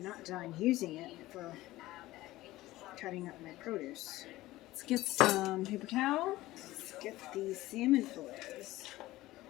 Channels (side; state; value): right; quieter; 17.1 dB